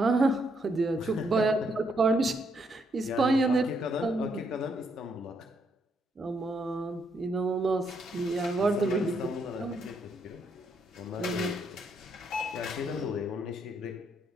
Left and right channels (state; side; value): normal; both; correlation 0.75